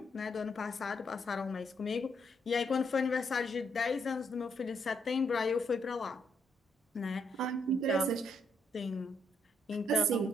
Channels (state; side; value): normal; both; correlation 0.75